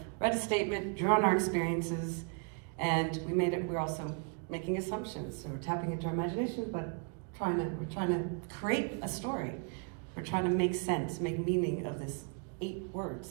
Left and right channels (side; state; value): left; quieter; 38.4 dB